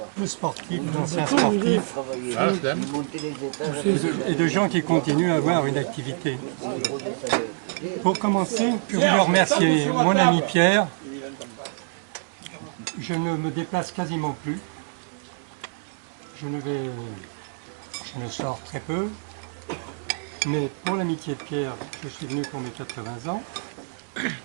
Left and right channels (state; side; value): silent; left; digital silence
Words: De sportifs, d'anciens sportifs, et de gens qui continuent à avoir une activité. Pour commencer, je voulais remercier mon ami Pierre. Je ne me déplace quasiment plus. Je ne sors très peu. Mais pour l'amitié de Pierre, je suis venu pour mes 80 ans.